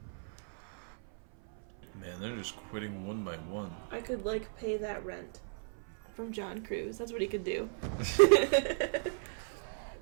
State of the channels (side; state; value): left; silent; 54 dB below the other